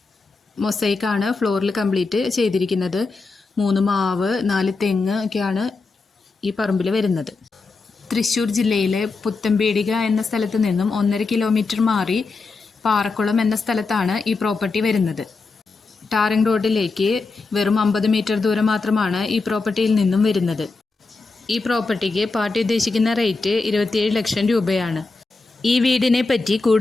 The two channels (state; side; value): quieter; right; 3.9 dB